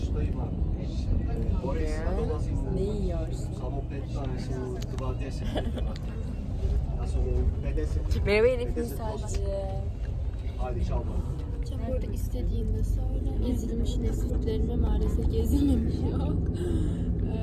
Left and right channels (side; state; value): both; identical; correlation 1.00